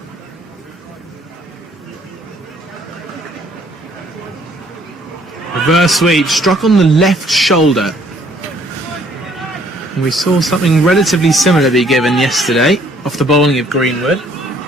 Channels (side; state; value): both; normal; correlation 0.62